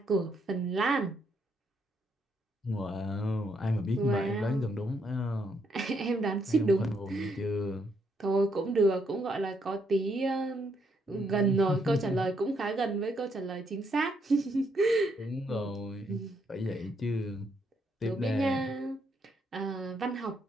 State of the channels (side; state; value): both; normal; correlation 0.75